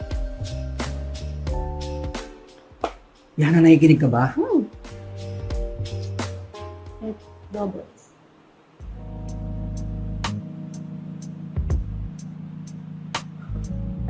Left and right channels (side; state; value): both; identical; correlation 1.00